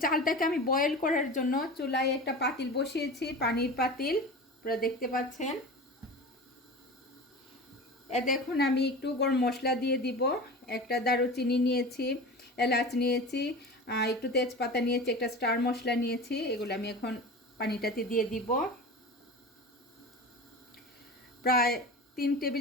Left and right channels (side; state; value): both; normal; correlation 0.33